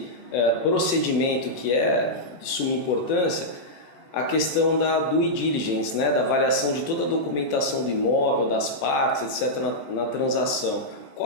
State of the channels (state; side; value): late; right; 14 ms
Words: procedimento que é de suma importância, a questão da due diligence, né, da avaliação de toda a documentação do imóvel, das partes, etc., na transação.